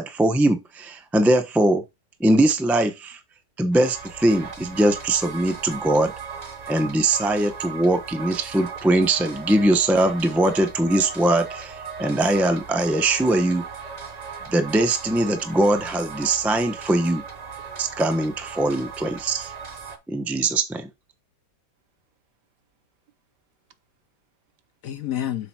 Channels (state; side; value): normal; both; correlation 0.72